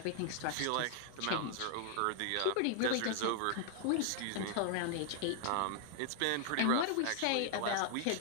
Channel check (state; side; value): different; both; correlation 0.00